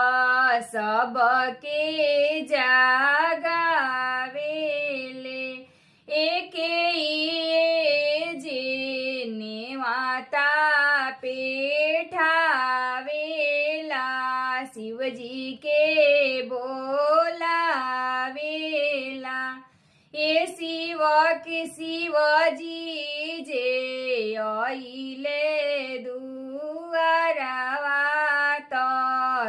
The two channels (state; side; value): identical; both; correlation 1.00